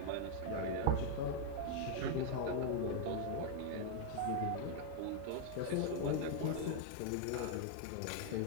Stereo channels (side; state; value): both; different; correlation 0.00